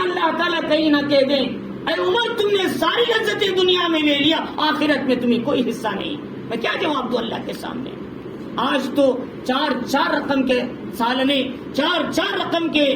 تعالیٰ کہیں نہ کہہ دیں اے عمر تم نے ساری لذتیں دنیا میں لے لیا، آخرت میں تمہیں کوئی حصہ نہیں۔ میں کیا جواب دوں اللہ کے سامنے؟ آج تو 4 رقم کے سالنے، 4 رقم کے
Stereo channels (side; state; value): both; identical; correlation 1.00